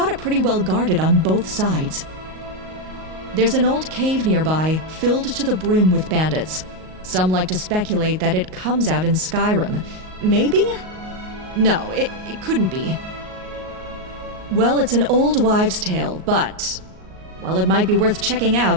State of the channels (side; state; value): left; late; 38 ms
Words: it pretty well guarded on both sides. There's an old cave nearby, filled to the brim with bandits. Some like to speculate that it comes out in Skyrim. Maybe? No, it couldn't be. Well, it's an old wives' tale, but... well, it might be worth checking out